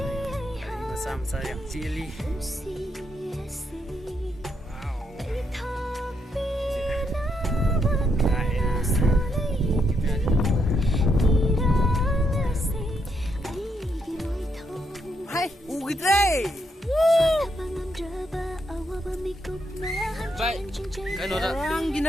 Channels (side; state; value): both; normal; correlation 0.77